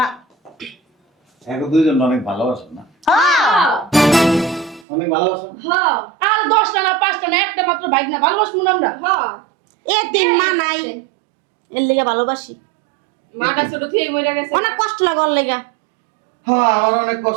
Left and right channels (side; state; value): left; drops out; at 4.9 s